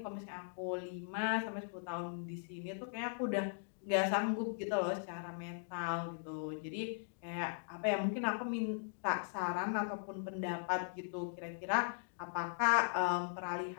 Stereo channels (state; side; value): silent; right; digital silence